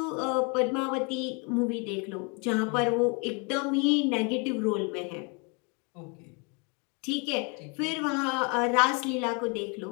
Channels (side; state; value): right; quieter; 32.3 dB